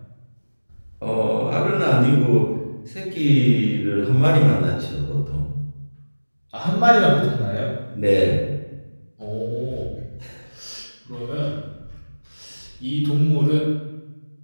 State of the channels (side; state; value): both; inverted; correlation -1.00